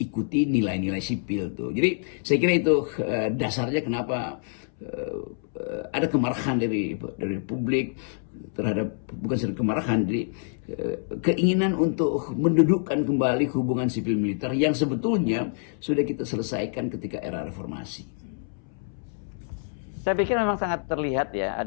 nilai-nilai sipil tuh. Jadi saya kira itu dasarnya kenapa ada kemarahan dari publik terhadap, bukan saja kemarahan, jadi keinginan untuk mendudukkan kembali hubungan sipil militer yang sebetulnya sudah kita selesaikan ketika era reformasi. Saya pikir memang sangat terlihat ya,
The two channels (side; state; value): right; silent; 60 dB below the other